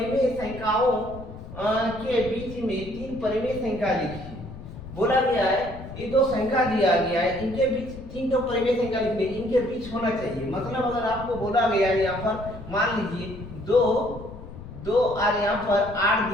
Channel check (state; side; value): noise; left; rumble, 14 dB below the sound